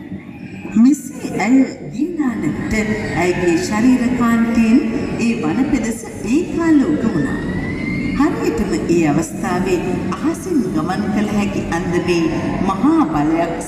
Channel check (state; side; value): identical; both; correlation 1.00